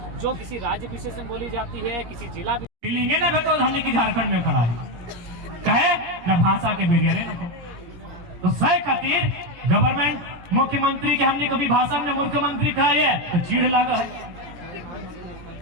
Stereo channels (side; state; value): left; late; 17 ms